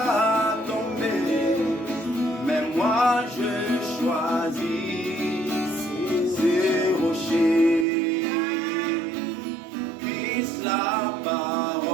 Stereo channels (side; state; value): left; drops out; at 7.9 s